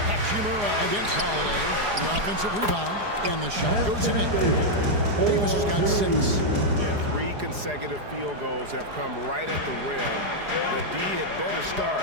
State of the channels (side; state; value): left; late; 4.8 ms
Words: Hachimura against Holiday. The offensive rebound. And the shot goes in. Davis has got 6. Yeah, 3 consecutive field goals have come right at the rim. The D had better start